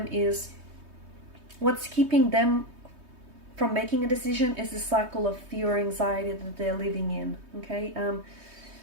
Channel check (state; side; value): late; left; 3.2 ms